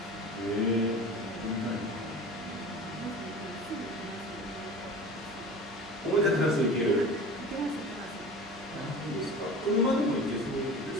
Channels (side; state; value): both; normal; correlation 0.36